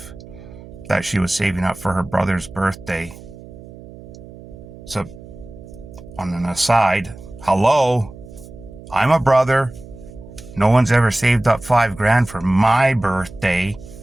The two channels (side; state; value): right; noise; hum, 17 dB below the sound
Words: that she was saving up for her brother's birthday. So on an aside, hello, I'm a brother. No one's ever saved up $5,000 for my birthday.